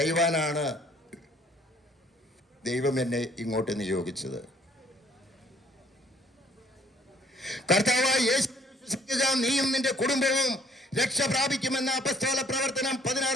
ദൈവം എന്നെ ഇങ്ങോട്ട് നിയോഗിച്ചത്. കർത്താവായ യേശു വിശ്വസിക്കുക, നീയും നിന്റെ കുടുംബവും രക്ഷ പ്രാപിക്കുമെന്ന അപ്പസ്തോല പ്രവർത്തനം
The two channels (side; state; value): both; normal; correlation 0.60